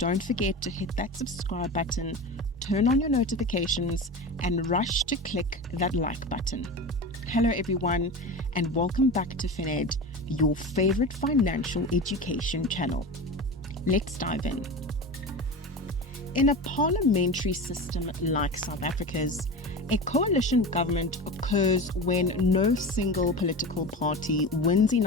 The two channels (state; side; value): normal; both; correlation 0.28